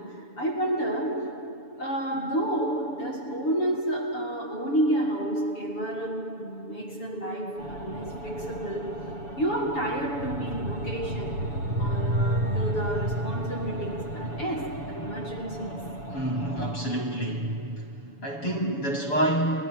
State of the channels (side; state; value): right; late; 7.0 ms